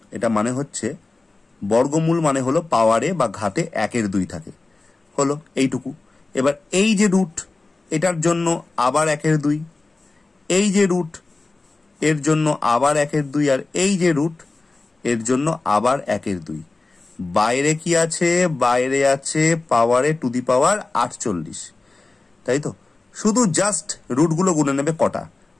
এটা মানে হচ্ছে বর্গমূল মানে হলো পাওয়ারে বা ঘাতে 1/2 থাকে, হলো এইটুকু। এবার এই যে রুট, এটার জন্য আবার 1/2, এই যে রুট এর জন্য আবার 1/2, আর এই যে রুট এর জন্য আবার 1/2। বাইরে কি আছে? বাইরে আছে পাওয়ারে টু দি পাওয়ার 48, তাই তো? শুধু জাস্ট রুটগুলো গুনে নেবে কটা,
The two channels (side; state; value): right; quieter; 3.4 dB